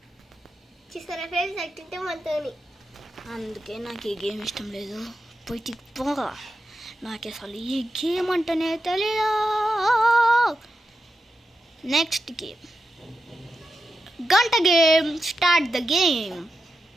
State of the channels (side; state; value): both; normal; correlation 0.89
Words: చూసారా ఫ్రెండ్స్, అట్టింటే మనతోని. అందుకే నాకు ఈ గేమ్ ఇష్టం లేదు. పోయి పోగా నాకు అసలు ఈ గేమ్ అంటేనే తెలియదు. నెక్స్ట్ గేమ్ గంట గేమ్. Start the game.